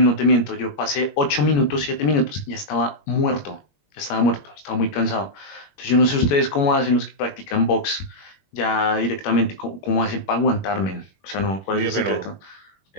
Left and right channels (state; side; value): late; right; 21 ms